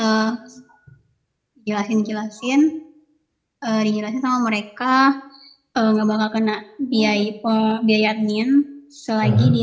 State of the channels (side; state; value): both; identical; correlation 1.00